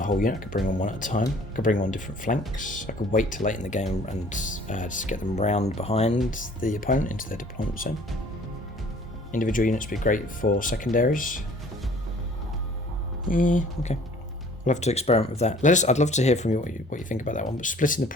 whole unit, I could bring on one at a time. I could bring on different flanks. I could wait till late in the game and just get them round behind the opponent into their deployment zone. Individual units would be great for secondaries. Yeah, okay. We'll have to experiment with that. I'd love to hear from you what you think about that one. But splitting the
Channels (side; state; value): both; normal; correlation 0.53